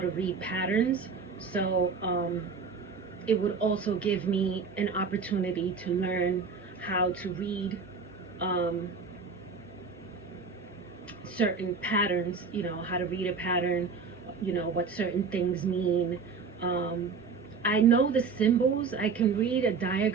read patterns, so it would also give me an opportunity to learn how to read um, certain patterns, how to read a pattern, what certain things mean. Um, I know the symbols. I can read a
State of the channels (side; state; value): left; quieter; 5.1 dB